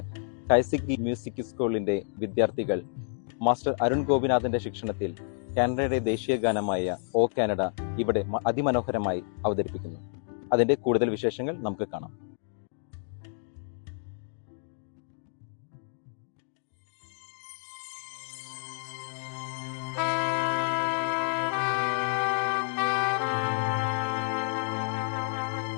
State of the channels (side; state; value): right; silent; digital silence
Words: കൈസിക്കി മ്യൂസിക് സ്കൂളിന്റെ വിദ്യാർത്ഥികൾ മാസ്റ്റർ അരുൺ ഗോപിനാഥിന്റെ ശിക്ഷണത്തിൽ കാനഡയുടെ ദേശീയ ഗാനമായ ഓ കാനഡ ഇവിടെ അതിമനോഹരമായി അവതരിപ്പിക്കുന്നു. അതിന്റെ കൂടുതൽ വിശേഷങ്ങൾ നമുക്ക് കാണാം.